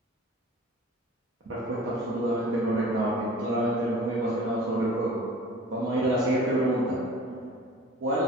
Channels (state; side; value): normal; both; correlation 0.44